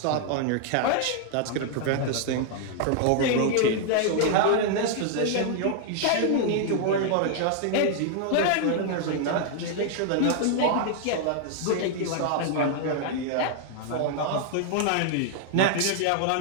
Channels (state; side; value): different; both; correlation 0.00